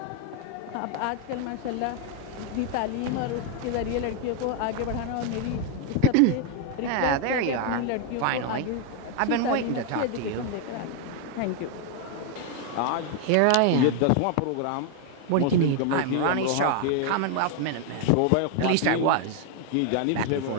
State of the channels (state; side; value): different; both; correlation 0.01